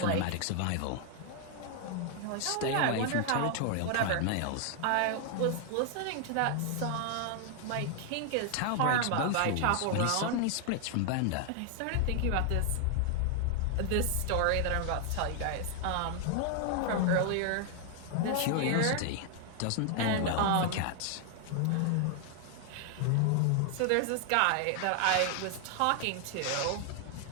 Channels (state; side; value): different; both; correlation 0.00